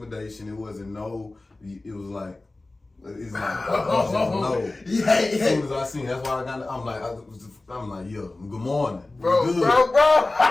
It wasn't no, it was like, it's like, no. Yeah. As soon as I seen, that's why I'm like, yo, good morning. Bro.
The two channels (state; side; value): quieter; right; 3.0 dB